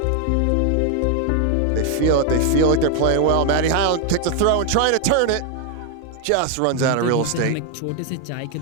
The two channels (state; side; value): different; both; correlation 0.01